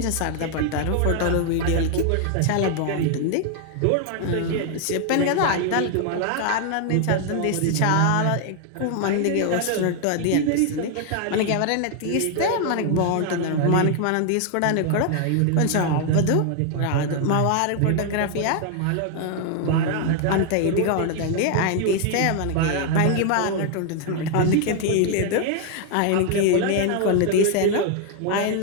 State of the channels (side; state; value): both; different; correlation 0.00